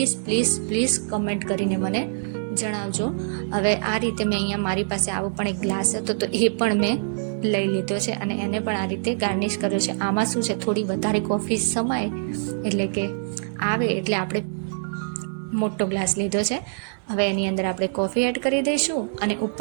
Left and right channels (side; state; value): left; silent; 61 dB below the other